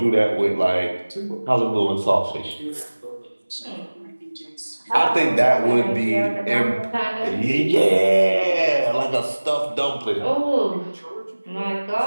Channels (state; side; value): inverted; both; correlation -1.00